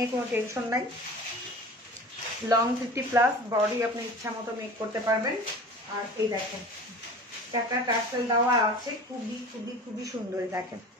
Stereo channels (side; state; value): both; normal; correlation 0.39